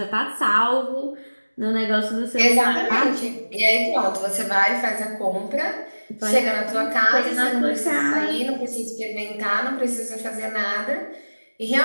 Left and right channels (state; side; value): inverted; both; correlation -1.00